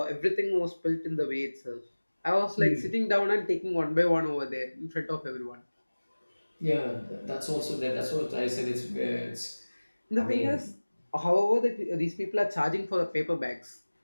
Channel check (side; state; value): both; inverted; correlation -1.00